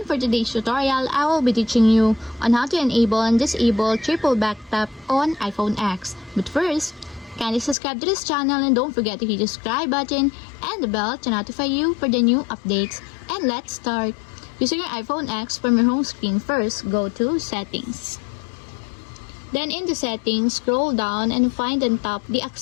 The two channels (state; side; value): drops out; right; at 7.8 s